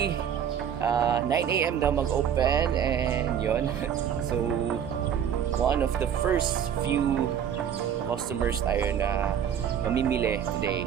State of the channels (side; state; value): left; quieter; 8.7 dB